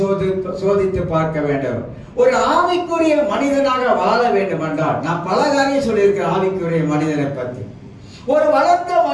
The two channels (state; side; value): identical; both; correlation 1.00